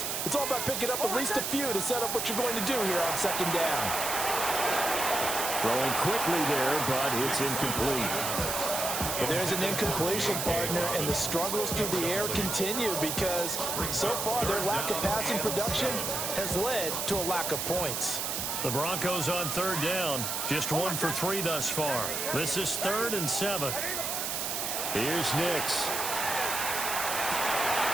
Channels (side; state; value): right; noise; hiss, 2 dB below the sound